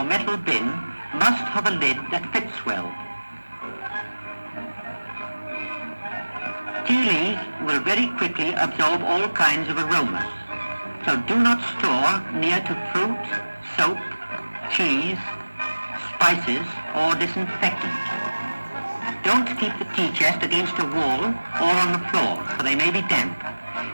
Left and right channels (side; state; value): both; inverted; correlation -1.00